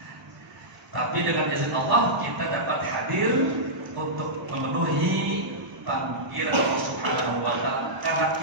Tapi dengan izin Allah kita dapat hadir untuk memenuhi panggilan Allah Subhanahu wa taala karena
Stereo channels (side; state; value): left; late; 1.0 ms